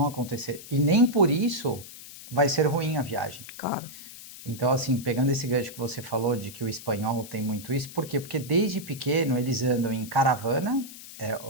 acontecer. E nem por isso vai ser ruim a viagem. Claro. Então, assim, pegando esse gancho que você falou de que o espanhol tem muito isso, por quê? Porque desde pequeno eles andam em caravana,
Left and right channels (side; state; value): left; noise; hiss, 15 dB below the sound